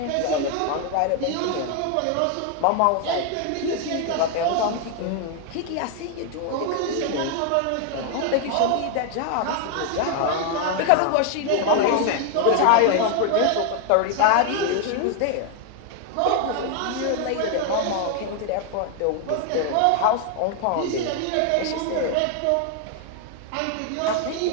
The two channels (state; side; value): different; both; correlation 0.00